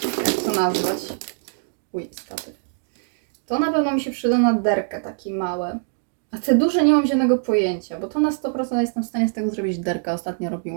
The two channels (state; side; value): silent; left; 63 dB below the other